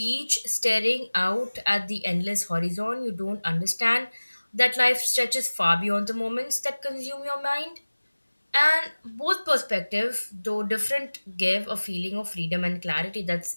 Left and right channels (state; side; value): inverted; both; correlation -1.00